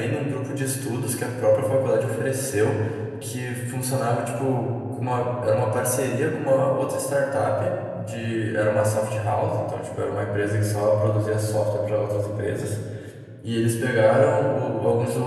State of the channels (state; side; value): identical; both; correlation 1.00